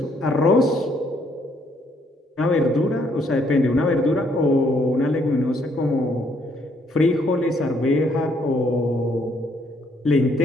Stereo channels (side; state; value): both; normal; correlation 0.69